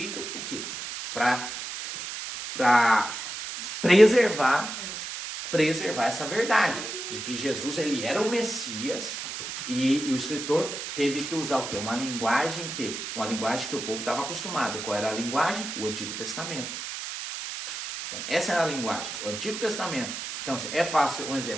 o quê? Para preservar essa verdade, de que Jesus ele era o Messias. E o escritor teve que usar o quê? Uma linguagem que o povo estava acostumado. Qual era a linguagem? O Antigo Testamento. Então, essa era a linguagem, o Antigo Testamento. Então, é fácil, um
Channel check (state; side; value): noise; right; hiss, 7 dB below the sound